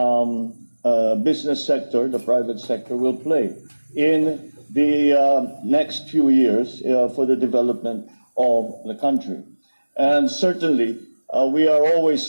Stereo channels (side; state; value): both; inverted; correlation -1.00